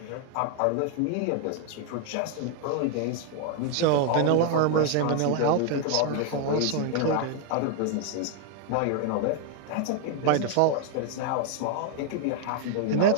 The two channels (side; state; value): both; different; correlation 0.00